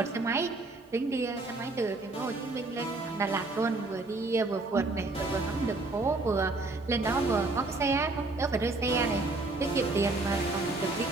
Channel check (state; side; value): quieter; left; 3.2 dB